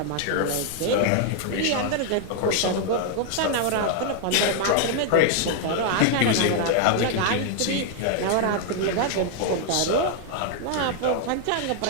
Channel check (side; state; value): both; different; correlation 0.00